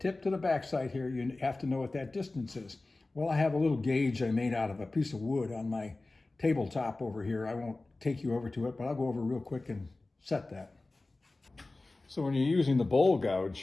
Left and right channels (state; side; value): quieter; right; 3.2 dB